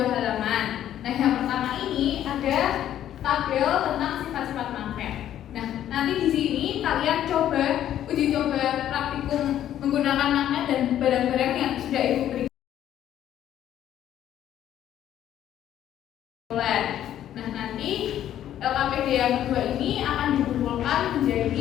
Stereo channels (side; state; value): right; quieter; 11.3 dB